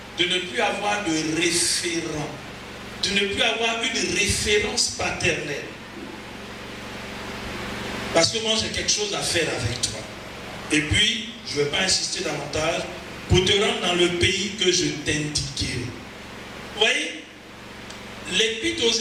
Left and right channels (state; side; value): identical; both; correlation 1.00